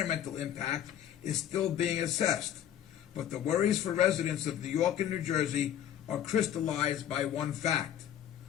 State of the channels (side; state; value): right; quieter; 10.4 dB